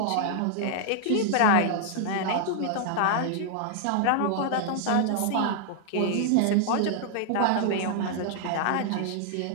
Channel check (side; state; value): both; different; correlation 0.00